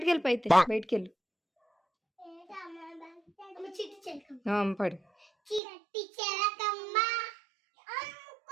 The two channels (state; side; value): drops out; left; at 5.6 s